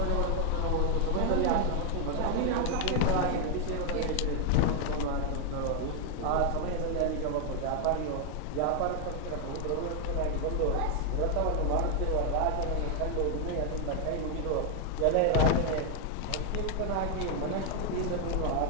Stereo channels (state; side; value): different; both; correlation 0.00